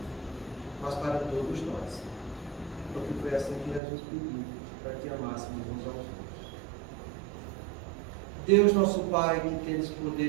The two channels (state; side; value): drops out; left; at 3.8 s